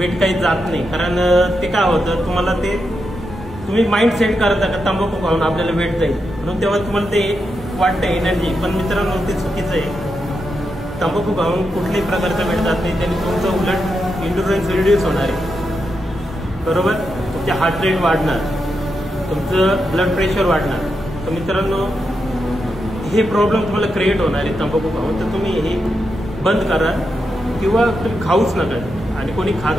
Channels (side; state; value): both; normal; correlation 0.85